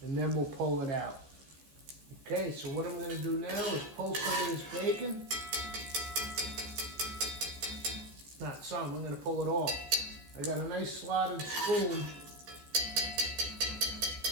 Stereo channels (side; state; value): left; late; 14 ms